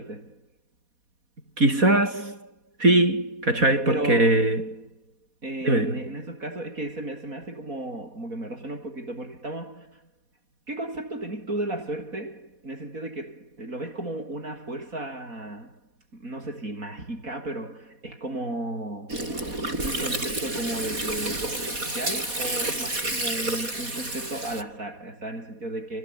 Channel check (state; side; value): late; left; 4.1 ms